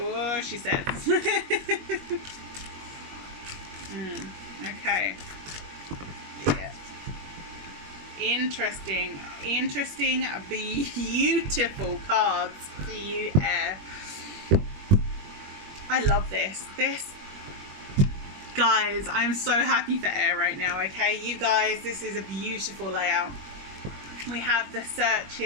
she says. Okay. Yeah. Interesting, beautiful cards for you, air. I love this. Guys, I'm so happy for air right now, okay? You guys, this is a beautiful layout. We have the search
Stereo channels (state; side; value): late; left; 21 ms